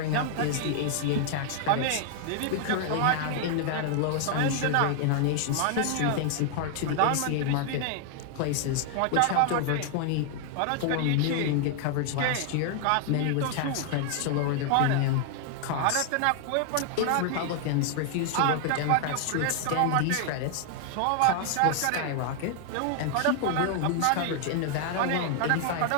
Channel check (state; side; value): different; both; correlation 0.00